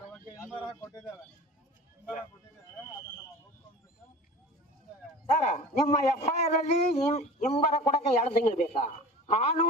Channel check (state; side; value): normal; both; correlation 0.38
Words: ಸರ್, ನಿಮ್ಮ FIR ಅಲ್ಲಿ ಹಿಂಬರ ಕೊಡಕ್ಕೆ 2 ತಿಂಗಳು ಬೇಕಾ?